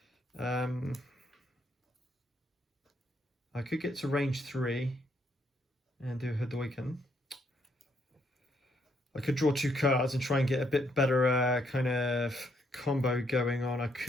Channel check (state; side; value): normal; both; correlation 0.73